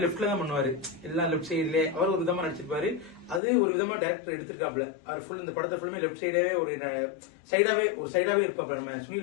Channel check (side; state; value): right; drops out; at 3.4 s